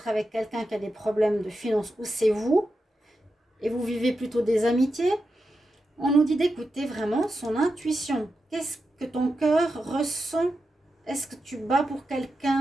avec quelqu'un qui a des problèmes de finances ou c'est vous, et vous vivez plutôt des amitiés. On nous dit d'écouter vraiment son intuition. Qu'est-ce que ton cœur ressent? Est-ce que tu bats pour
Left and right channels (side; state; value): both; normal; correlation 0.89